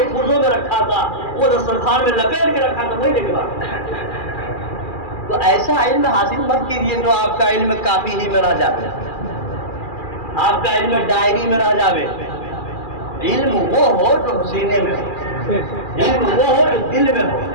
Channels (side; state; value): right; late; 2.4 ms